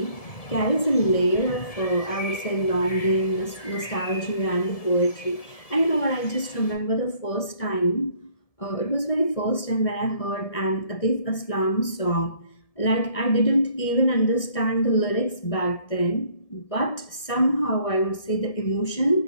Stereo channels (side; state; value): right; late; 1.7 ms